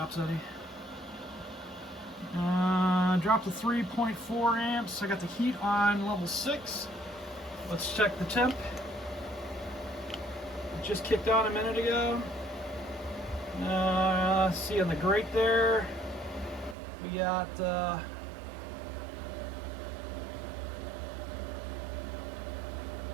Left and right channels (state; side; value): drops out; left; at 16.8 s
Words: any. Dropped to 3.4 amps. I got the heat on level 6. Let's check the temp. It just kicked on a minute ago. See on the grate there, we got